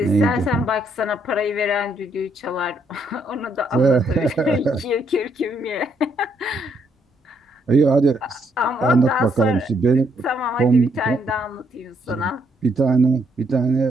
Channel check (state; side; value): normal; both; correlation 0.73